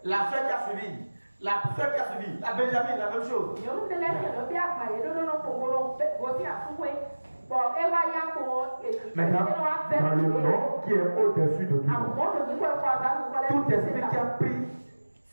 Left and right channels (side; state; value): both; inverted; correlation -1.00